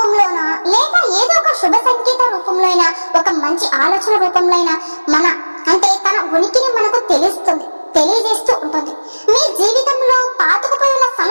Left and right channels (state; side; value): inverted; both; correlation -1.00